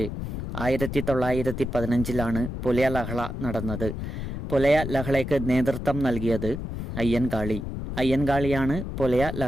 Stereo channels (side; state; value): left; noise; rumble, 6 dB below the sound